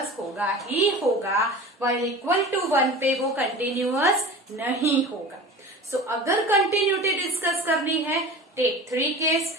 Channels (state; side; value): normal; both; correlation 0.36